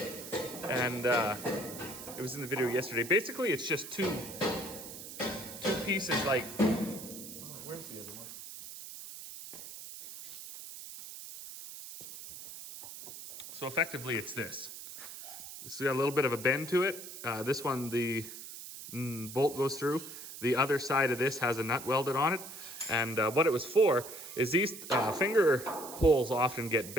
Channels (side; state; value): right; noise; hiss, 12 dB below the sound